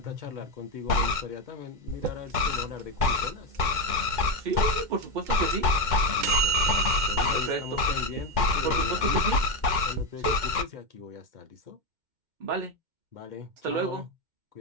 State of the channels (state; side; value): late; left; 2.1 ms